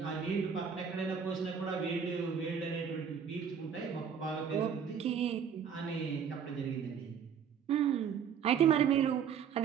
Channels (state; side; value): quieter; left; 7.4 dB